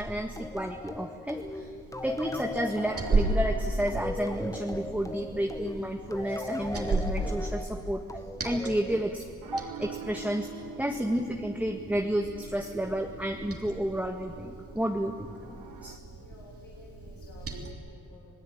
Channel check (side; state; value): both; normal; correlation 0.82